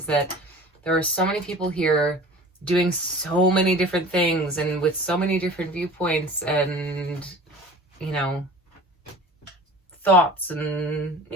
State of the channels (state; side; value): normal; both; correlation 0.42